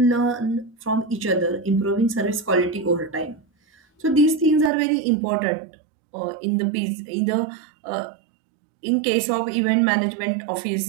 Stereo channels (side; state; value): left; drops out; at 4.7 s